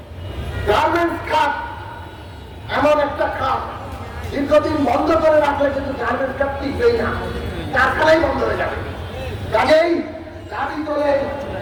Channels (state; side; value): identical; both; correlation 1.00